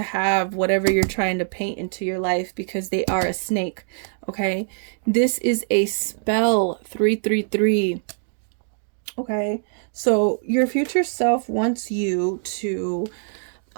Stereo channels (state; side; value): silent; left; digital silence